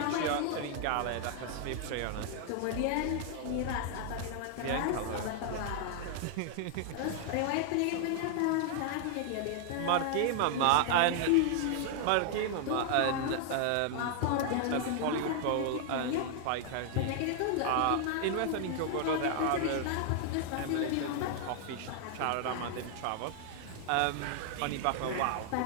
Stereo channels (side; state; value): both; different; correlation 0.00